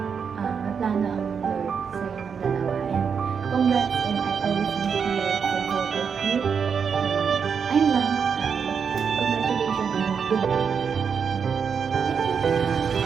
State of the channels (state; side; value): quieter; left; 6.5 dB